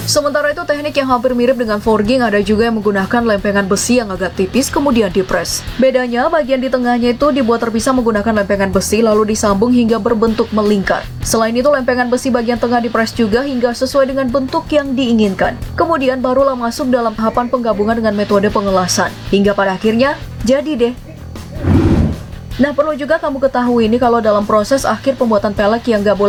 Sementara itu, teknik yang hampir mirip dengan forging ada juga yang menggunakan lempengan besi yang agak tipis kemudian dipres. Bedanya, bagian di tengahnya itu dibuat terpisah menggunakan lempengan besi lalu disambung hingga berbentuk melingkar. Selain itu, lempengan besi bagian tengah dipres juga hingga sesuai dengan bentuk yang diinginkan. Kemudian barulah masuk dalam tahapan penggabungan dengan metode pengelasan. Hingga pada akhirnya, jadi deh. Nah, perlu juga kamu ketahui ini kalau dalam proses akhir pembuatan pelek yang gak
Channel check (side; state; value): both; identical; correlation 1.00